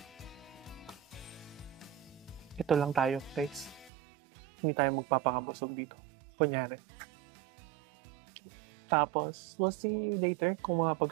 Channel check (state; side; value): drops out; left; at 3.9 s